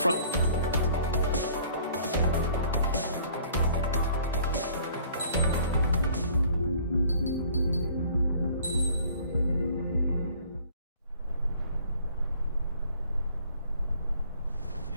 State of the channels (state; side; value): inverted; both; correlation -0.55